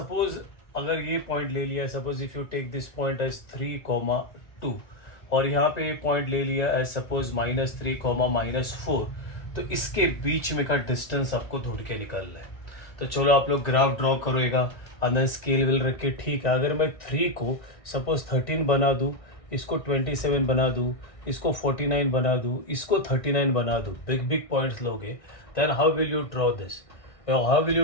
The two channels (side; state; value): right; late; 1.6 ms